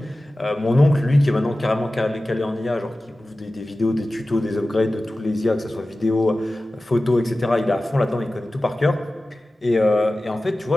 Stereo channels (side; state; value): both; normal; correlation 0.96